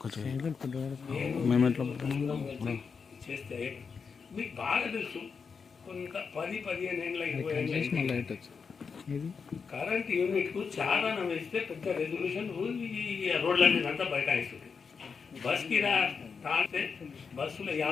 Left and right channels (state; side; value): quieter; right; 5.6 dB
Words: చేస్తే మీకు బాగా తెలుసు, కొంత 10-15 ఏళ్ళ 20 ఏళ్ళ కరెంట్ యూనిట్కు చాలా వేస్తే పెద్ద రెజల్యూషన్ రోడ్ల మీద అంతా బైకాయిస్తుంది. బస్కి తాగితే బస్సులో